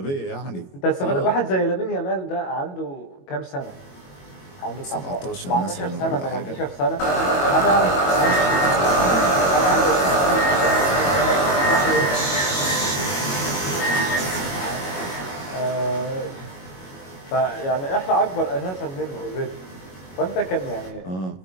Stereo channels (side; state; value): right; late; 22 ms